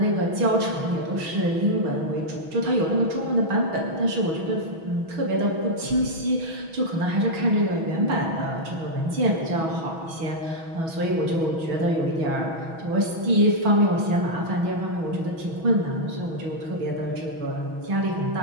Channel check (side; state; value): left; late; 6.2 ms